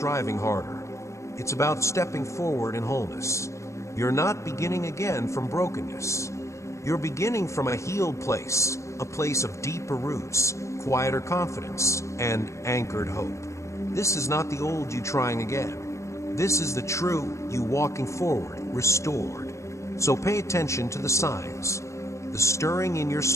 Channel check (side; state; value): right; late; 0.14 ms